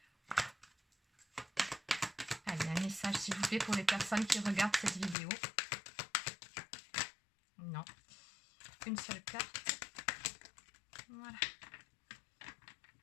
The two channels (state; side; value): drops out; right; at 5.2 s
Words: Allez, un message s'il vous plaît pour les personnes qui regardent cette vidéo. Non. Une seule carte. Voilà.